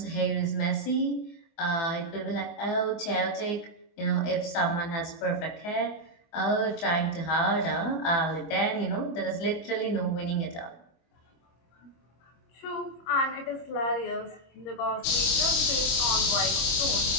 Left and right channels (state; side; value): late; right; 25 ms